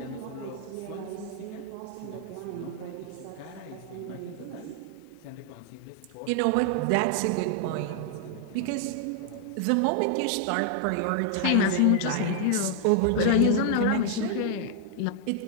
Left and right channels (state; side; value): different; both; correlation 0.00